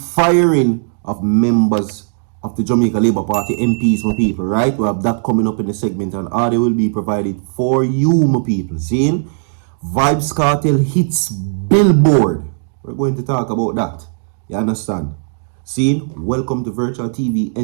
of members of the Jamaica Labour Party MPs, my people, right? We have that coming up in the segment, and audio will be provided for you, my people. Seeing? Vybz Kartel hits Billboard. We're going to talk about that. You understand? Seeing? Welcome to virtual TV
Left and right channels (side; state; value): left; silent; 69 dB below the other